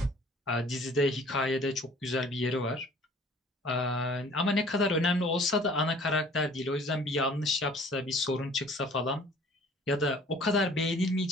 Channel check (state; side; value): normal; both; correlation 0.52